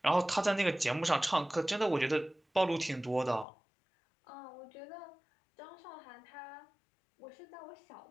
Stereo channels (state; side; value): drops out; right; at 3.5 s